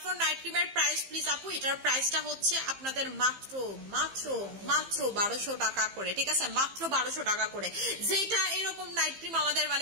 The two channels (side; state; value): left; late; 15 ms